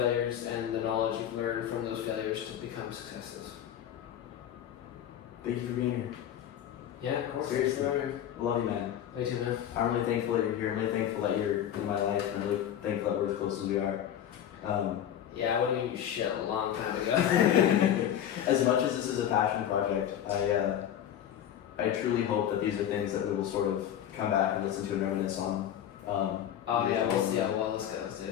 and the knowledge you've learned from those failures to become successes. Thank you for being here. Yeah, of course. Seriously. I love you, man. Me too, man. I'm really thankful that you're here. I'm really thankful that you're in my life. I'm really thankful that we're as close as we are. Yeah, I would have given you shit a long time ago. As much as this is a passion project, I truly hope that these are things that we will sort of come back and listen to and reminisce on. We'll see how well this goes,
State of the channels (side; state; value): right; quieter; 10.3 dB